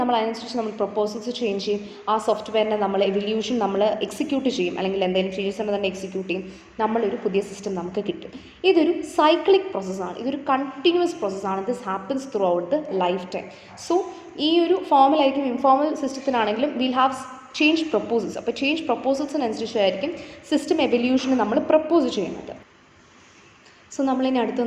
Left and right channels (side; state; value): both; identical; correlation 1.00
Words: അതിനനുസരിച്ച് നമ്മൾ പ്രൊപ്പോസൽസ് ചേഞ്ച് ചെയ്യും. ആ സോഫ്റ്റ്വെയറിനെ നമ്മൾ എവല്യൂഷൻ നമ്മൾ എക്സിക്യൂട്ട് ചെയ്യും, അല്ലെങ്കിൽ എന്തെങ്കിലും ചേഞ്ചസ് ഉണ്ടെങ്കിൽ തന്നെ എക്സിക്യൂട്ട് ചെയ്യും. നമ്മളൊരു പുതിയ സിസ്റ്റം നമുക്ക് കിട്ടും. ഇതൊരു സൈക്ലിക് പ്രോസസ്സാണ്, ഇതൊരു കണ്ടിന്യൂസ് പ്രോസസ്സാണ്. This happens throughout the lifetime. So ഈ ഒരു ഫോമലായിരിക്കും ഇൻഫോർമൽ സിസ്റ്റത്തിനാണെങ്കിലും വിൽ ഹാവ് ചേഞ്ച് പ്രൊപ്പോസൽസ്. അപ്പോൾ ചേഞ്ച് പ്രൊപ്പോസൽസിനനുസരിച്ചായിരിക്കും സിസ്റ്റം എവല്യൂഷന് നമ്മൾ പ്രപ്പോസ് ചെയ്യുന്നത്. സോ നമ്മളിനി അടുത്ത്